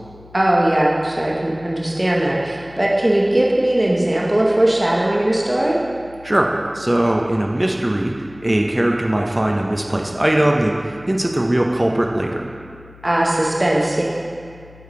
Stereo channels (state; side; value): noise; left; hum, 23 dB below the sound